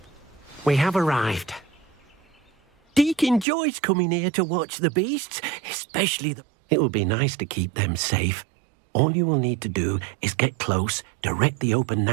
We have arrived. Deke enjoys coming here to watch the beasts, especially the... It will be nice to keep them safe. All you will need to do is get close, direct the open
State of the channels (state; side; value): drops out; left; at 3.5 s